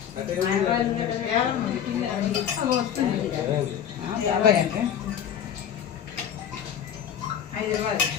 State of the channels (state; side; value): quieter; right; 9.0 dB